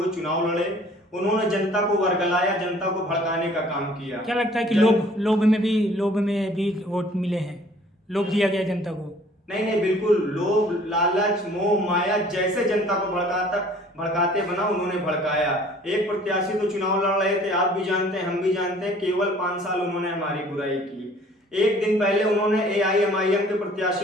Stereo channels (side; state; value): both; normal; correlation 0.54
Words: चुनाव लड़े। उन्होंने जनता को वर्गलाया, जनता को भड़काने का काम किया। क्या लगता है कि लोभ में भी वोट मिले हैं, लोभ दिया गया जनता को? नहीं, बिल्कुल लोभ, लालच, मोह माया जैसे जनता को भड़काते बना उन्होंने भड़काया। एक प्रत्याशी तो चुनाव लड़ रहे थे, आप भी जानते हैं, हम भी जानते हैं, केवल 5 साल उन्होंने हमारी बुराई की। एक दिन पहले उन्होंने AIMIM के